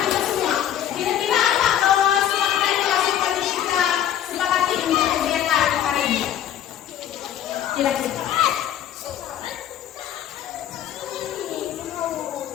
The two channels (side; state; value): right; quieter; 10.6 dB